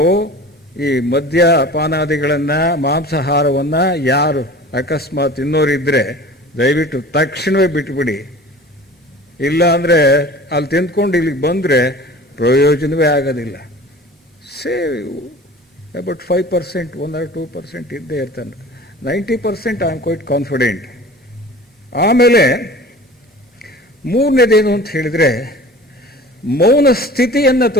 ಈ ಮದ್ಯಪಾನಾದಿಗಳನ್ನ, ಮಾಂಸಾಹಾರವನ್ನ ಯಾರು ಅಕಸ್ಮಾತ್ ತಿನ್ನೋರಿದ್ರೆ ದಯವಿಟ್ಟು ತಕ್ಷಣವೇ ಬಿಟ್ಬಿಡಿ. ಇಲ್ಲ ಅಂದರೆ ಅಲ್ಲಿ ತಿಂದ್ಕೊಂಡು ಇಲ್ಲಿಗೆ ಬಂದರೆ ಪ್ರಯೋಜನವೇ ಆಗೋದಿಲ್ಲ. ಸೇವ್ ಅಬೌಟ್ 5%, 1 or 2% ಇದ್ದೇ ಇರ್ತಾನೆ. 90% ಐ ಆಮ್ ಕ್ವೈಟ್ ಕಾನ್ಫಿಡೆಂಟ್. ಆಮೇಲೆ ಮೂರನೇದೇನು ಅಂತ ಹೇಳಿದರೆ, ಮೌನ ಸ್ಥಿತಿಯನ್ನು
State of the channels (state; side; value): normal; both; correlation 0.41